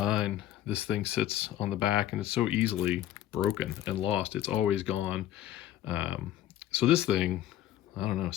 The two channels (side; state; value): right; quieter; 12.6 dB